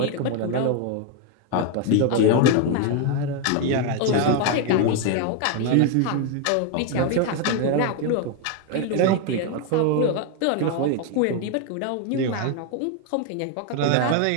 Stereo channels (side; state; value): both; different; correlation 0.01